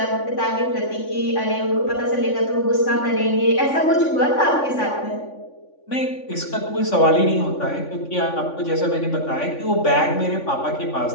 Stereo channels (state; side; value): late; right; 3.5 ms